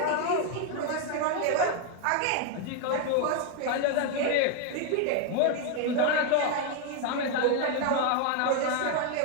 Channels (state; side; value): different; both; correlation 0.01